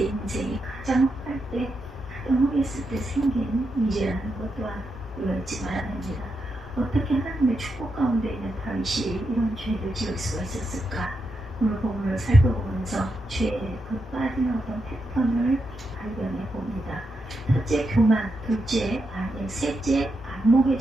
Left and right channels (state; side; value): normal; both; correlation 0.85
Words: 인생이 가장 할 때, 가장 후했을 때 생긴 일이라는 것 또한 우리가 잊지 말아야 합니다. 어떻게 하나님의 축복 가운데 있는 다윗이 이런 죄를 지을 수가 있었을까? 오늘 본문을 살펴보면서 죄의 그 빠지는 어떤 패턴을 발견해 봅니다. 첫째 교만, 둘째 아내, 셋째 안목의